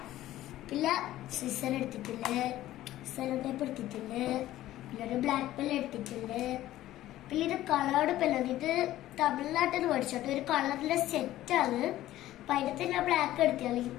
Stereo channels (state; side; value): quieter; right; 14.5 dB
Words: പിന്നെ സിസർ എടുത്തിട്ടുണ്ട്, സെലോ ടേപ്പ് എടുത്തിട്ടുണ്ട്, പിന്നെ ഒരു ബ്ലാക്ക് പെൻ എടുത്തിട്ടുണ്ട്. പിന്നെ ഇത് കളേർഡ് പെല്ലാണ്. ഇത് തമിഴ്നാട്ടിൽ നിന്ന് മേടിച്ചോട്ടെ, ഒരു കളറിലെ സെറ്റാണ്. അപ്പൊ അതിനകത്ത് ഞാൻ ബ്ലാക്ക് എടുത്താൽ